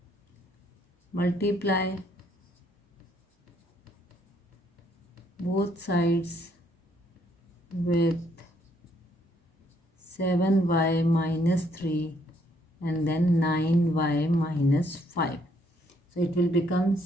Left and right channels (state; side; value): normal; both; correlation 0.69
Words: multiply both sides with 7y minus 3 and then 9y minus 5. So it will become